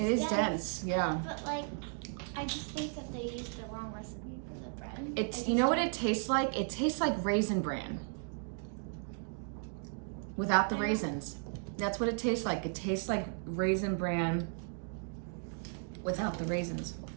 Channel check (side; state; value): left; silent; 54 dB below the other